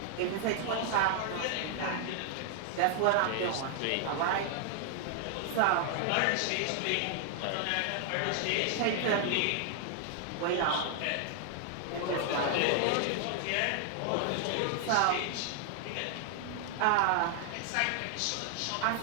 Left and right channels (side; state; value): both; different; correlation 0.00